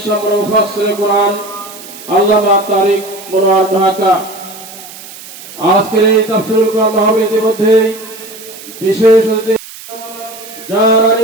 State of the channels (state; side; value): noise; right; hiss, 16 dB below the sound